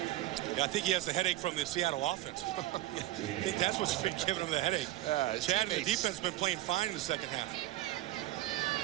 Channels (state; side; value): quieter; left; 15.7 dB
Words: Yeah, I think he has the headache from the Seattle offense. I think that's what's been giving him the headache. Chad and the defense have been playing fine in the second half.